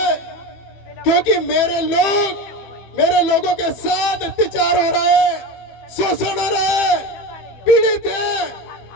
क्योंकि मेरे लोगों के साथ अत्याचार हो रहा है, शोषण हो रहा है, पीड़ित है,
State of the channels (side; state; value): right; late; 15 ms